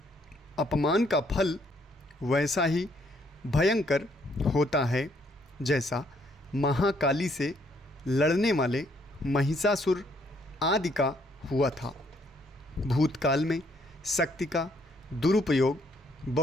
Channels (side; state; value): both; normal; correlation 0.69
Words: अपमान का फल वैसा ही भयंकर होता है जैसा महाकाली से लड़ने वाले महिषासुर आदि का हुआ था। भूतकाल में शक्ति का दुरुपयोग